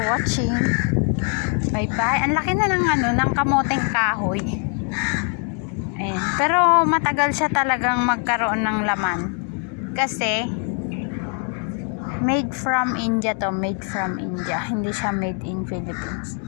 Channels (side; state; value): right; quieter; 39.9 dB